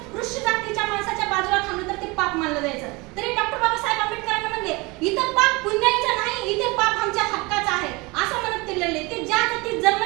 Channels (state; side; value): quieter; left; 25.2 dB